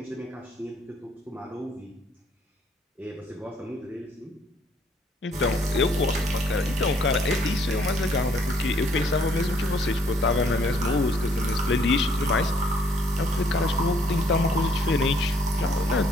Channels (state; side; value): normal; both; correlation 0.65